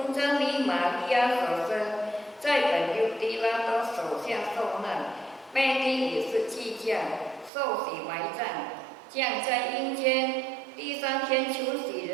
真理玛利亚所生，在本犹地拉多手下受难，被钉以是祭架，受洗埋葬，降在阴间，第3天求死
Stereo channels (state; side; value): drops out; left; at 7.5 s